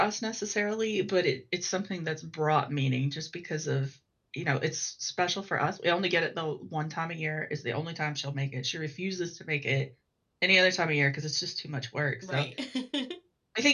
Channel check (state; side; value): identical; both; correlation 1.00